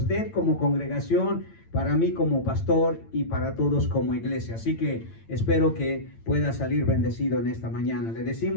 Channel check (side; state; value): right; late; 8.9 ms